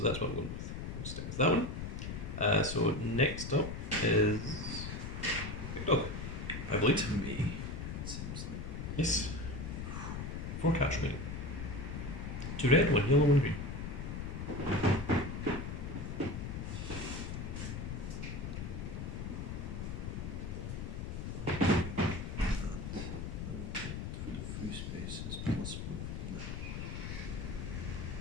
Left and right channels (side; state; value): left; noise; rumble, 5 dB below the sound